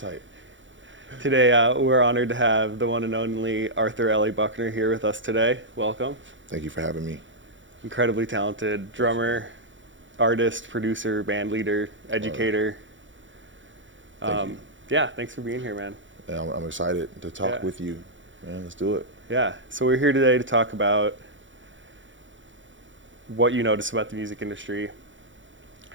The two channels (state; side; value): late; left; 0.55 ms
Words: Today, we're honored to have the one and only Arthur L.A. Buckner here with us today. Welcome. Thank you for having me. Incredibly talented drummer, artist, producer, band leader, educator. Thank you. Yeah, thanks for being here, man. Yeah, I'm excited to talk with you, man. Let's do it. Yeah, so we're here today to talk about what you notice about the music industry,